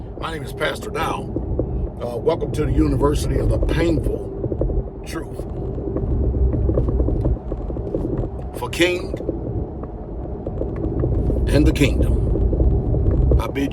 My name is Pastor Dow. Welcome to the University of the Painful Truth. For King and the Kingdom, I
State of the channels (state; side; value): identical; both; correlation 1.00